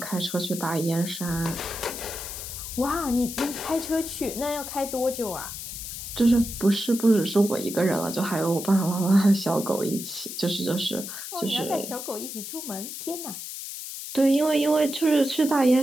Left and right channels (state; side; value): noise; left; hiss, 8 dB below the sound